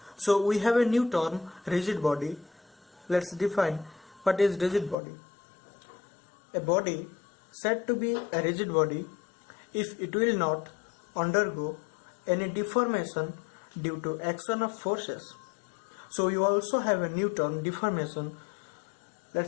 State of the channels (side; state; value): right; drops out; at 5.0 s